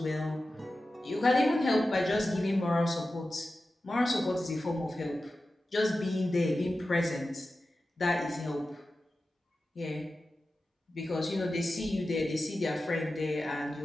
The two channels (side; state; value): both; normal; correlation 0.94